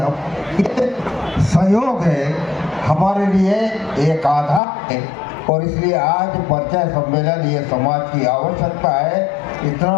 सहयोग है हमारे लिए एक आधार है। और इसलिए आज परिचय सम्मेलन ये समाज की आवश्यकता है।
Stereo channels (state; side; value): drops out; right; at 4.6 s